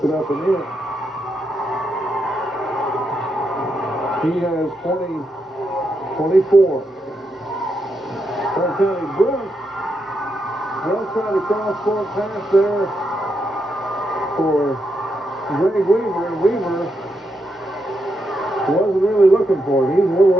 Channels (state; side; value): normal; both; correlation 0.82